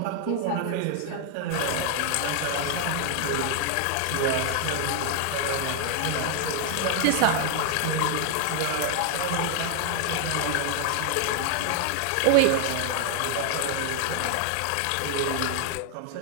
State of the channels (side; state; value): both; different; correlation 0.00